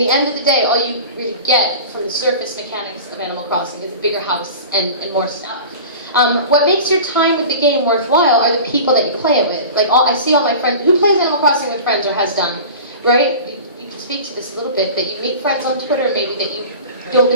end of the day, all you really get from the surface mechanics of Animal Crossing is a bigger house and more stuff. What makes your time with the game worthwhile are the people that you play it with. Like, I see all my friends who plays Animal Crossing with friends or has done, right? You can speak to this a little bit, that you meet friends on Twitter, maybe that you don't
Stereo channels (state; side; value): inverted; both; correlation -0.36